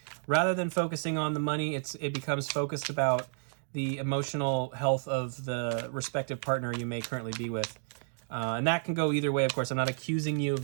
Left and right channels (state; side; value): silent; left; digital silence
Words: Rather than focusing on the money, it becomes focused about the emotional health of the respective partner you may currently be with. And that can go either way, of course. I'm not accusing you